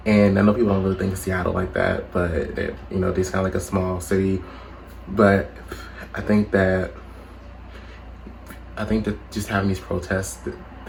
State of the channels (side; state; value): both; identical; correlation 1.00